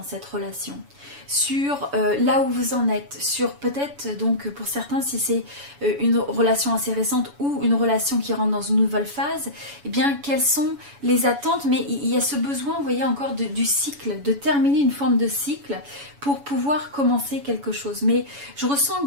cette relation, sur là où vous en êtes, sur peut-être donc pour certains si c'est une relation assez récente ou une relation qui rentre dans une nouvelle phase, eh bien quelles sont les attentes, mais il y a ce besoin, vous voyez encore du cycle, de terminer une forme de cycle pour pouvoir commencer quelque chose. Mais je ressens que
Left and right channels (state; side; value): late; left; 7.1 ms